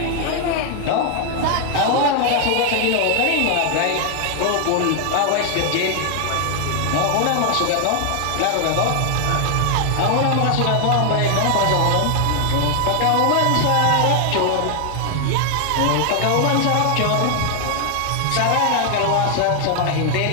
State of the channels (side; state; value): both; different; correlation 0.00